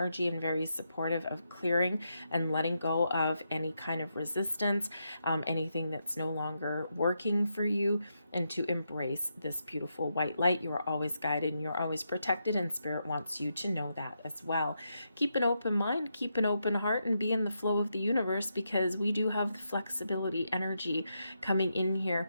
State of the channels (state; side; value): inverted; both; correlation -0.83